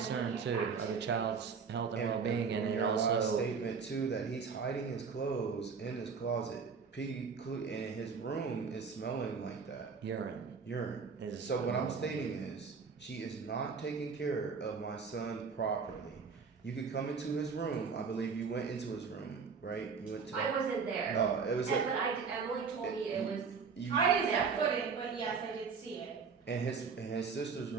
many concern too, of the activities. child's health and And well-being, and from it your last also, statement too, that he's hiding his clothes in his closet. And his room is smelling like that. Urine. is. So what I'm stating is, she is not taking care of my son properly. You could come into his room. I believe you went into his room, right? You went to. I wasn't there. No, it was. Emily told me it was. You, I didn't set foot in, but yes, I did see it. and his sister's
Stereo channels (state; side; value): quieter; left; 5.5 dB